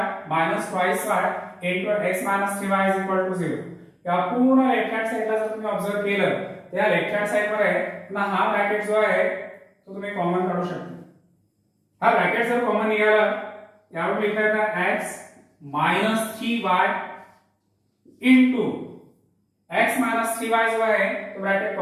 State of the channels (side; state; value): both; identical; correlation 1.00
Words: minus twice y into x minus 3y is equal to 0. या पूर्ण लेफ्ट हँड साइडला जर तुम्ही ऑब्झर्व केलं तर या लेफ्ट हँड साइड मध्ये पुन्हा हा ब्रॅकेट जो आहे तो तुम्ही कॉमन काढू शकता. हा ब्रॅकेट जर कॉमन निघाला यावर लिहिता येतं x minus 3y into x minus 3y जो आहे तो ब्रॅकेट